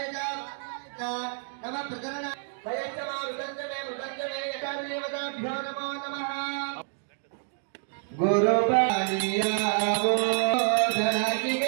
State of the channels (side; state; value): left; silent; 57 dB below the other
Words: नमः प्रकरण सयच्चमा मृदंजमे यकार्यवदाभ्यो नमो नमः गुरुपालियावो